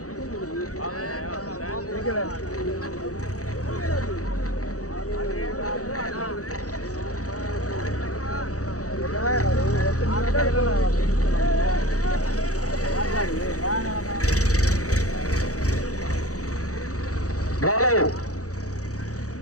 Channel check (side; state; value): right; late; 0.66 ms